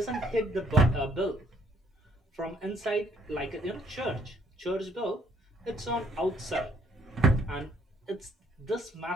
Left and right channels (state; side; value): normal; both; correlation 0.65